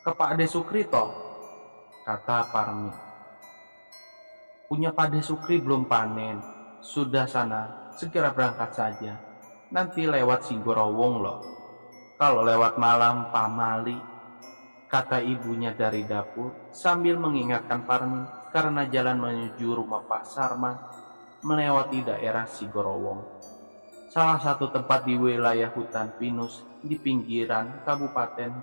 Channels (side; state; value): both; inverted; correlation -1.00